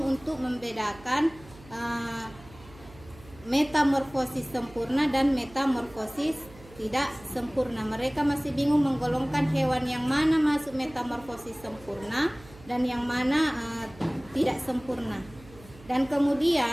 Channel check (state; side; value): noise; right; hum, 21 dB below the sound